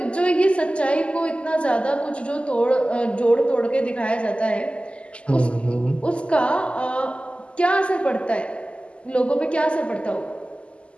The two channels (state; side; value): late; right; 0.055 ms